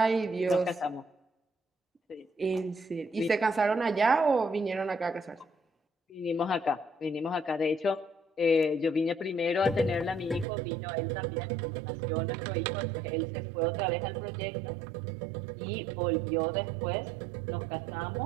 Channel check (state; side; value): drops out; left; at 10.5 s